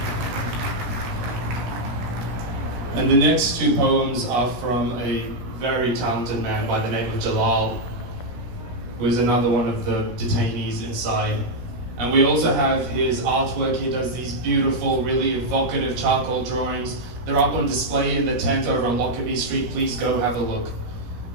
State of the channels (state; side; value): late; left; 17 ms